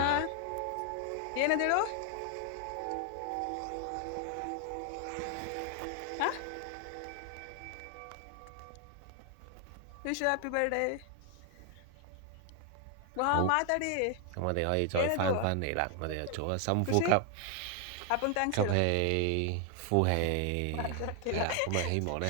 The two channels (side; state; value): both; different; correlation 0.00